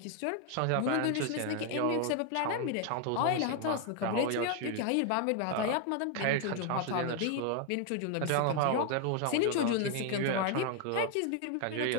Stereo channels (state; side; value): different; both; correlation 0.01